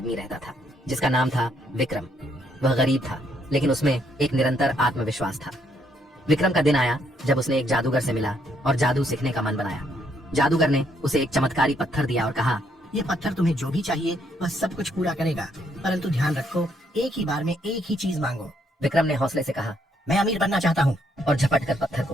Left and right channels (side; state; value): both; normal; correlation 0.72